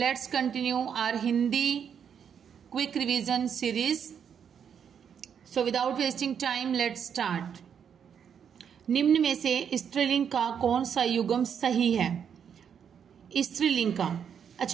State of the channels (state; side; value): quieter; left; 7.8 dB